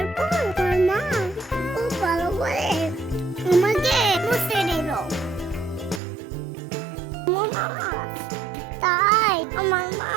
পর আমার মা খুব ভালো করে আমাকে মুছে দিল। তাই আমার মা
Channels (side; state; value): left; drops out; at 6.0 s